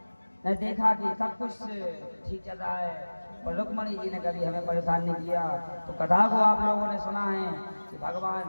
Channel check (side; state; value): both; inverted; correlation -1.00